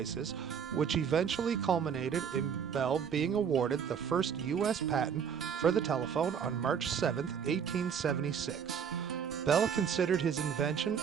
which eventually culminated in Bell being awarded the first U.S. patent for the telephone on March 7, 1876. Bell considered his invention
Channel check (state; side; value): quieter; left; 7.4 dB